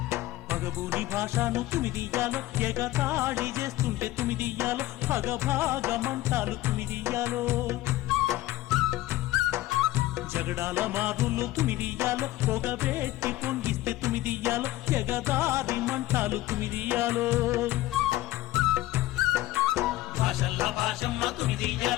పగబూని భాషను తుమిదియ్యాలో ఎగతాళి చేస్తుంటే తుమిదియ్యాలో పగభాగమంటాలు తుమిదియ్యాలో జగడాల మారులు తుమిదియ్యాలో పొగబెట్టి పొంగిస్తే తుమిదియ్యాలో ఎగదారి మంటాలు తుమిదియ్యాలో భాషల్ల భాషమ్మ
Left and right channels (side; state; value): right; quieter; 16.5 dB